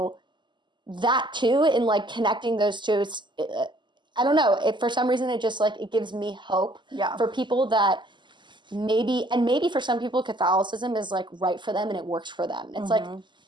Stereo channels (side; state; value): left; late; 0.22 ms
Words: that too, in like connecting those two, I don't know, for some reason it just like, it gives me hope for people that maybe for some people Catholicism is like right for them and it works for them. It's like,